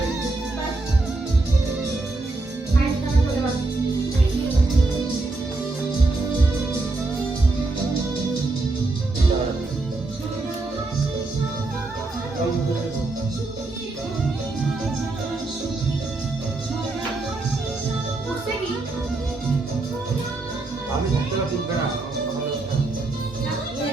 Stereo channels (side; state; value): left; quieter; 3.2 dB